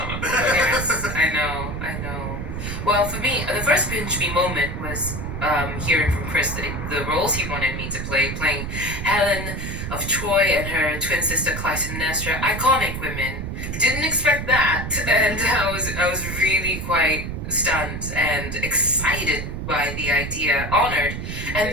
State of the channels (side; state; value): right; noise; rumble, 5 dB below the sound